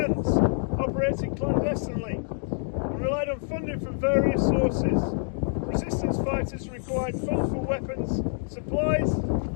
operated clandestinely and relied on funding from various sources. Resistance fighters required funds for weapons, supplies,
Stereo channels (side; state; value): right; silent; digital silence